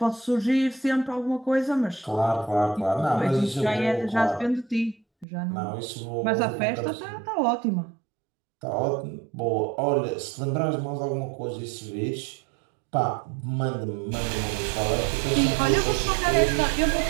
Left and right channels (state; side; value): drops out; left; at 5.2 s